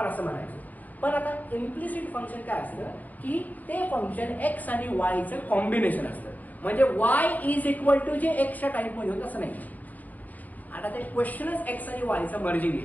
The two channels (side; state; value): right; late; 0.079 ms